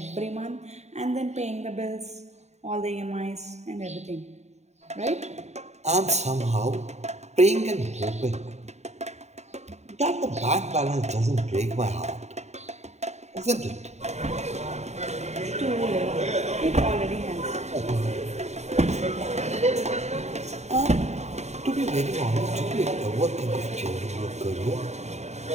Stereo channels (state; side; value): late; left; 0.32 ms